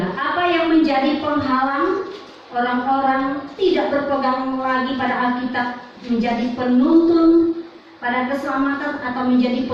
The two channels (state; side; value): identical; both; correlation 1.00